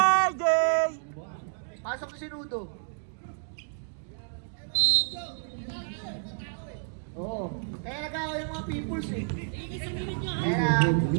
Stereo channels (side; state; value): left; silent; digital silence